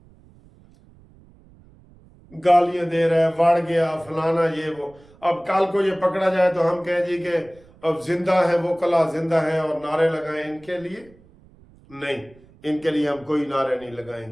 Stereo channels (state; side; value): noise; right; rumble, 26 dB below the sound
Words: گالیاں دے رہا ہے، وڑ گیا فلانا یہ وہ۔ اب کل کو یہ پکڑا جائے تو ہم کہیں جی کہ اب زندہ ہے وہ کلا زندہ ہے اور نعرے لگائیں ان کے لیے؟ نہیں، ان کے لیے ہم کوئی نعرے نہیں لگائیں